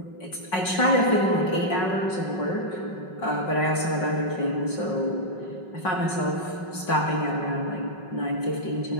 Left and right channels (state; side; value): late; right; 5.4 ms